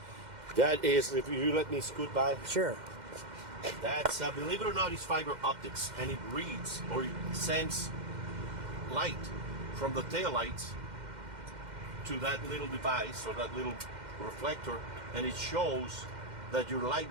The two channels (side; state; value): left; late; 2.1 ms